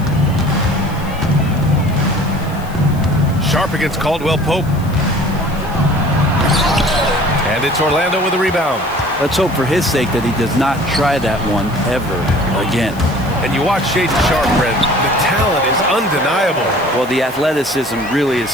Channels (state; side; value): noise; left; hiss, 21 dB below the sound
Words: Sharp against Caldwell Pope. And it's Orlando with a rebound. Let's hope for his sake that he does not try that one ever again. And you watch Shaedon Sharp, Brent. The talent is undeniable. Well, the athleticism really is